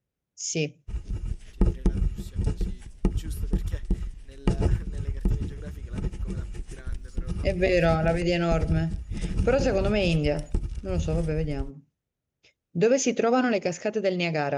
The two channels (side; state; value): both; identical; correlation 1.00